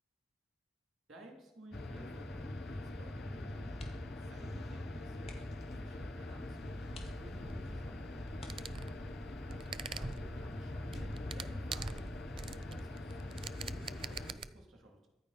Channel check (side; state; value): both; normal; correlation 0.83